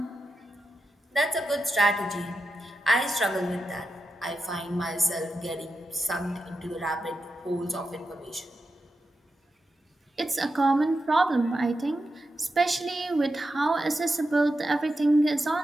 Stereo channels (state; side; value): normal; both; correlation 0.89